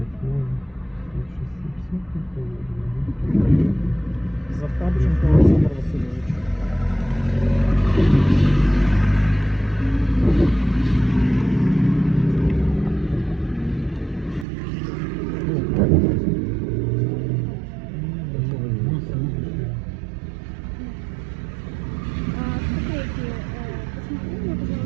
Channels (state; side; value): drops out; left; at 14.5 s